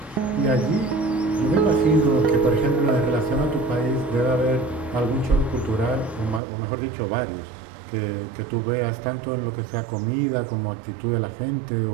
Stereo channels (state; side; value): drops out; left; at 6.4 s